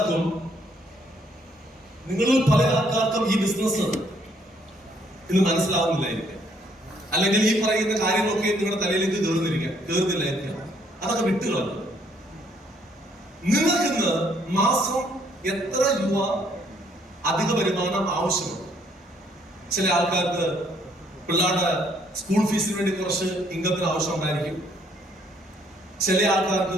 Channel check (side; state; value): both; normal; correlation 0.67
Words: പല ആൾക്കാർക്കും ഈ ബിസിനസ് ഇന്ന് മനസ്സിലാവുന്നില്ലായിരിക്കാം, അല്ലെങ്കിൽ ഈ പറയുന്ന കാര്യങ്ങളൊക്കെ നിങ്ങളുടെ തലയിലേക്ക് കയറുന്നില്ലായിരിക്കാം. അതൊക്കെ വിട്ടുകളല്ല. നിങ്ങൾക്കിന്ന് മാസം എത്ര രൂപ അധിക വരുമാനം ആവശ്യമുണ്ട്? ചില ആൾക്കാർക്ക് പിള്ളേരുടെ സ്കൂൾ ഫീസിന് വേണ്ടി കുറച്ച് ഇൻകത്തിന് ആവശ്യമുണ്ടായിരിക്കും. ചില